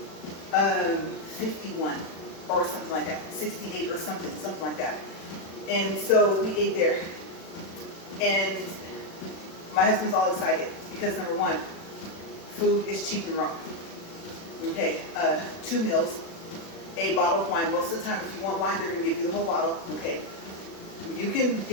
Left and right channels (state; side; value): late; right; 36 ms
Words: 51 or something like that, 68 or something like that. And so we ate there. And my husband's all excited because number one, food is cheap in Rome. Okay, 2 meals, a bottle of wine. Most of the time, if you want wine, they're going to give you the whole bottle. Okay, you can